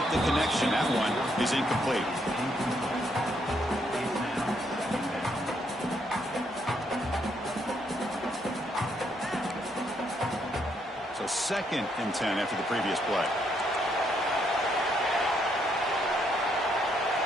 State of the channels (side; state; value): both; normal; correlation 0.74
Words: the connection. That one is incomplete. So 2nd and 10 after the previous play.